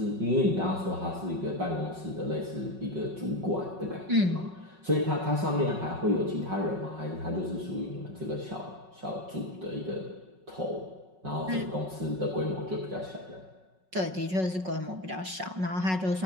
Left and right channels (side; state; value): left; late; 5.4 ms